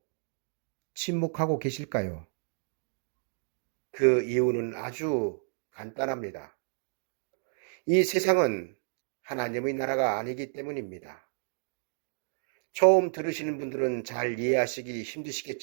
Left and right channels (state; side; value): silent; left; digital silence